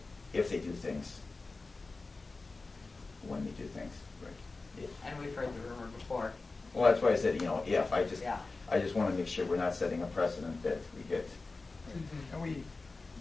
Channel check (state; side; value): quieter; right; 3.7 dB